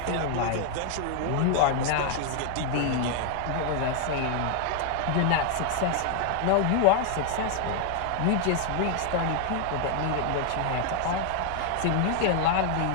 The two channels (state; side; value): different; both; correlation 0.00